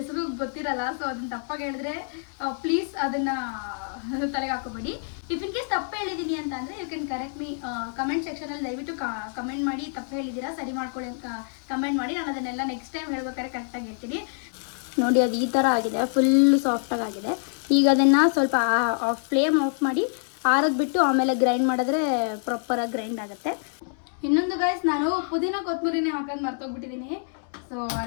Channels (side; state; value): right; silent; 59 dB below the other